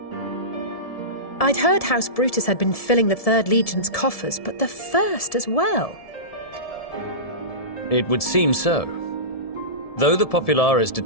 I'd heard House Brutus had been filling the 3rd Legion's coffers, but the 1st as well. It would seem so. Though the Popularis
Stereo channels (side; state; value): right; late; 1.7 ms